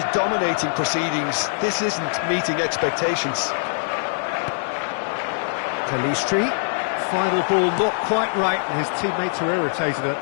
dominating proceedings. This isn't meeting expectations. Pelistri. Final ball not quite right, and his teammates are irritated at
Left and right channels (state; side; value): silent; right; digital silence